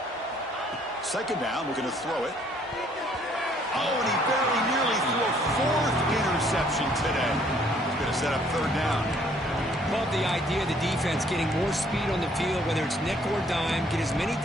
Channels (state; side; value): normal; both; correlation 0.63